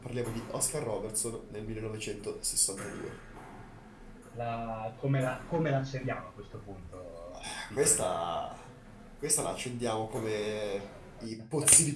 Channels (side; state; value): both; identical; correlation 1.00